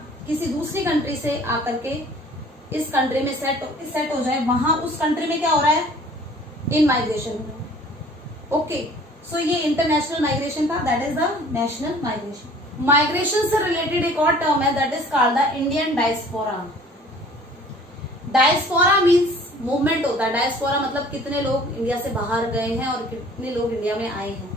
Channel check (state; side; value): normal; both; correlation 0.51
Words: किसी दूसरी कंट्री से आकर के इस कंट्री में सेट हो जाए, वहां उस कंट्री में क्या हो रहा है? इन माइग्रेशन हो रहा है। ओके, सो ये इंटरनेशनल माइग्रेशन था, that is the national migration. Migration से रिलेटेड एक और टर्म है, that is called the Indian diaspora. Diaspora means movement होता है। डायस्पोरा मतलब कितने लोग इंडिया से बाहर गए हैं और कितने लोग इंडिया में आए हैं,